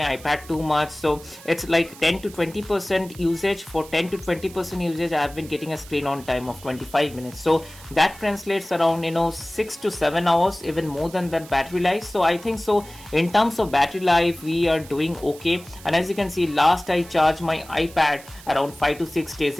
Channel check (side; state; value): right; noise; hiss, 19 dB below the sound